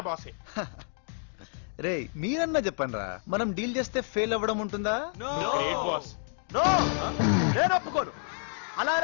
బాసే. రే మీరన్నా చెప్పండి రా, మనం డీల్ చేస్తే ఫెయిల్ అవ్వడం ఉంటుందా? Great boss. నేను ఒప్పుకోను. అలా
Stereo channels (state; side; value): silent; right; 58 dB below the other